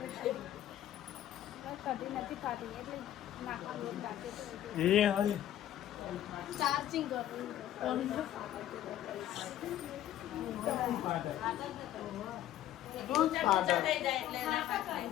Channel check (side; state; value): right; quieter; 12.4 dB